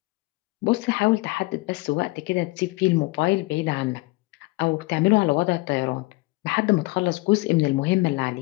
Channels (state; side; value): quieter; right; 23.0 dB